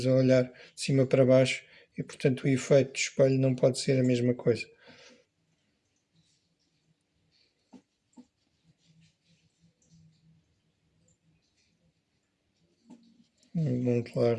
a olhar de cima para baixo e portanto o efeito do espelho não pode ser a mesma coisa. Um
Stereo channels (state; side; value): identical; both; correlation 1.00